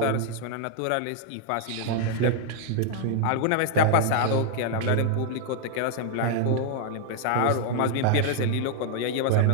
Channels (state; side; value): different; both; correlation 0.00